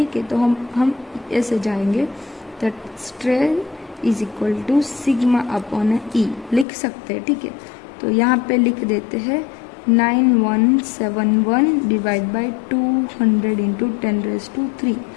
है, तो हम ऐसे जाएंगे, that strain is equal to sigma upon E लिख सकते हैं। ठीक है, तो यहाँ पे लिख देते हैं 9171 डिवाइड बाई 200 इंटू 10⁻³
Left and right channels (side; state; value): right; drops out; at 6.7 s